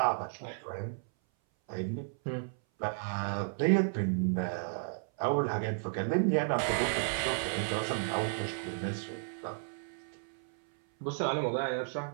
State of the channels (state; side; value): silent; left; 56 dB below the other